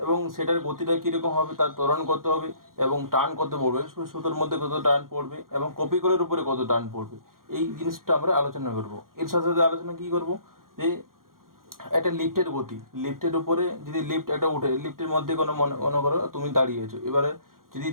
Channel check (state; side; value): late; left; 0.91 ms